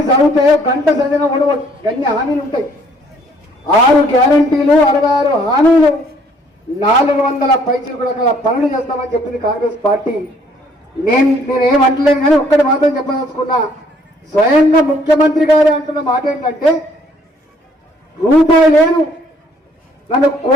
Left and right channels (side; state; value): both; normal; correlation 0.62